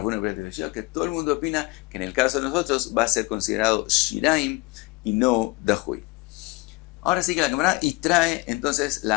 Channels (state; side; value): quieter; right; 24.4 dB